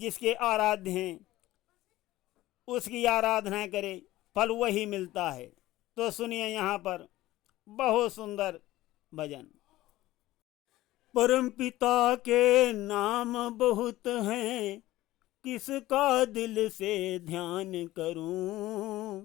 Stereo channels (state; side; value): quieter; right; 16.5 dB